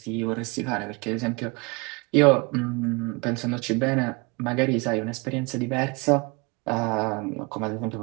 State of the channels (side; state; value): left; quieter; 28.0 dB